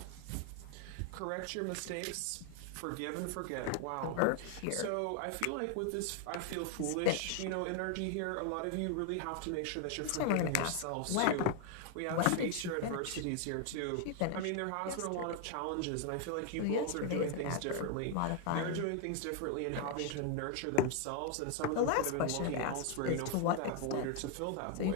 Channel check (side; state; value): both; different; correlation 0.00